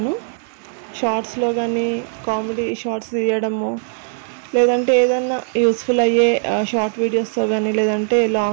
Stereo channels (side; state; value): left; silent; 58 dB below the other